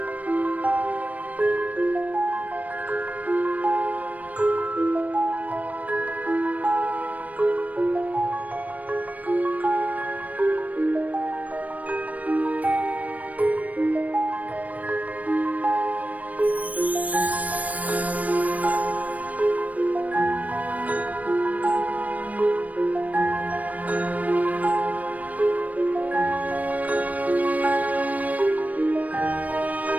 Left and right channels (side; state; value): left; late; 0.071 ms